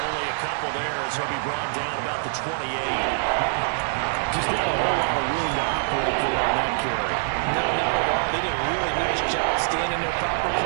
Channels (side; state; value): left; silent; digital silence